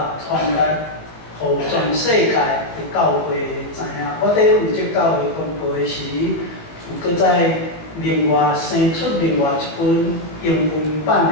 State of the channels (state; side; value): late; right; 18 ms